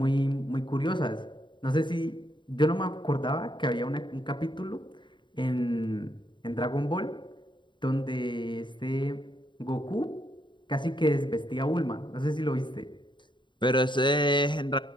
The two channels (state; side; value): late; right; 0.23 ms